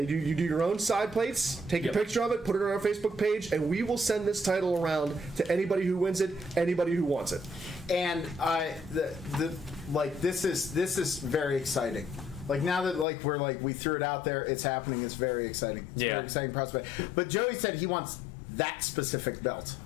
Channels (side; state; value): right; drops out; at 13.1 s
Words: do your own side plates, take a picture of it, put it on our Facebook page, and we will send this title around to anybody who wins it, anybody who wants it. And this is very exciting. Like now that we threw it out there, it's happening. It's very exciting. It's a very exciting prospect. But Joey said he wants that specific belt.